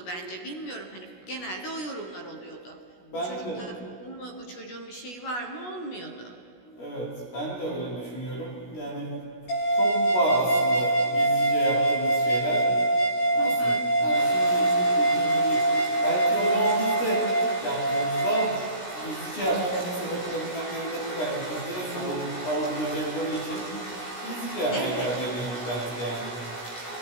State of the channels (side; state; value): right; late; 16 ms